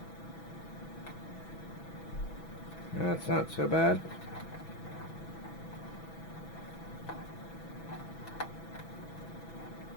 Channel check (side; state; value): right; late; 6.1 ms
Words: That's not so bad.